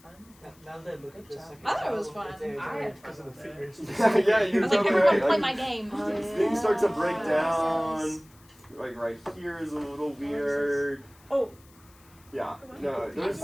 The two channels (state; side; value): noise; left; hiss, 28 dB below the sound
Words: fun. Now that I look at this, I thought it was fun. I had because of the fingers. Yeah, I you was like, totally everyone right. play my game. Things start to break down. Like right here is a little weird. Oh. Yeah, no,